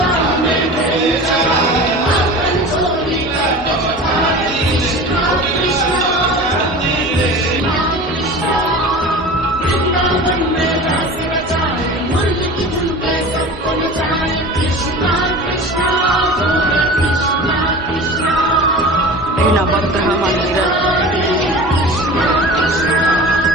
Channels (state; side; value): normal; both; correlation 0.36